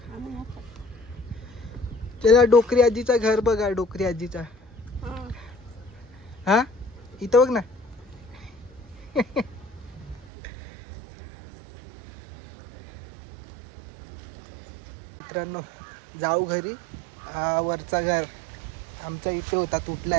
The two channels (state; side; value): drops out; left; at 10.2 s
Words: त्याला डोकरी आजीचा घर बघा. डोकरी आजीचा, हा इथं बघ ना. मित्रांनो जाऊ घरी. हा वरचा घर आमचा इथे होता,